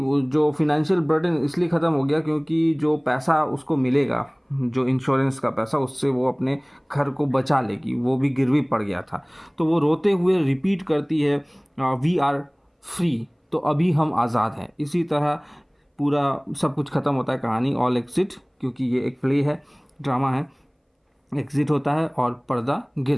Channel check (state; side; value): identical; both; correlation 1.00